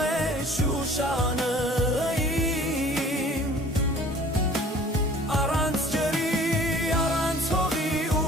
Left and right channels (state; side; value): normal; both; correlation 0.50